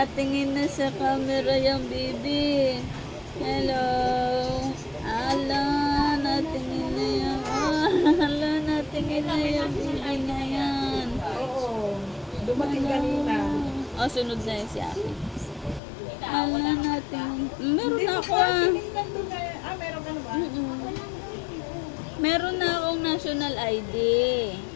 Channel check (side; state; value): right; drops out; at 15.8 s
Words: na sa camera yung baby. Hello! Hello! Natingin na yung... Hello! Natingin na yung baby na yan. Oo. Dumating kanina. Oh, sunod na yun si Aki. Hello! Natingin... Meron na ako Tinignan doon na. Meron ka na ba? Meron na akong national ID.